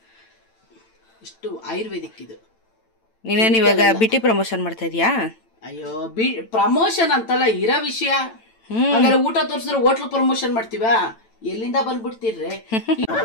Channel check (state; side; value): late; right; 9.0 ms